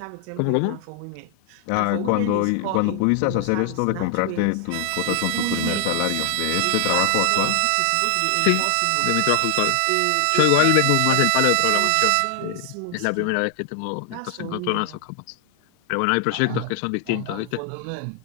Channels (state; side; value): different; both; correlation 0.00